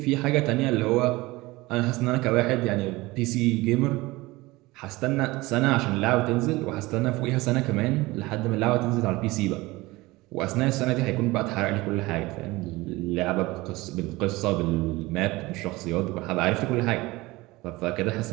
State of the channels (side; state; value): left; quieter; 20.8 dB